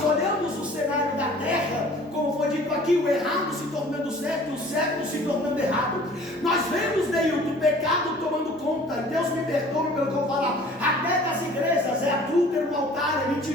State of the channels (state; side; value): normal; both; correlation 0.50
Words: olhamos o cenário da terra, como foi dito aqui, o errado se tornando certo, o certo se tornando errado. Nós vemos, Neilton, o pecado tomando conta. Deus me perdoe pelo que eu vou falar. Até das igrejas, é adúltero no altar, é